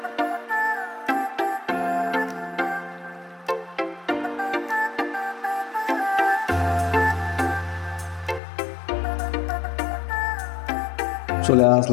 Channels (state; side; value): drops out; right; at 8.4 s